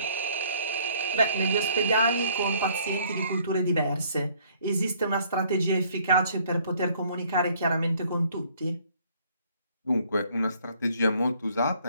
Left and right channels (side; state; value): both; inverted; correlation -0.62